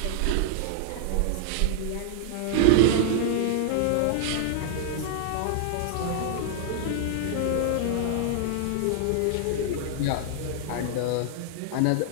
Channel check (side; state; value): both; different; correlation -0.01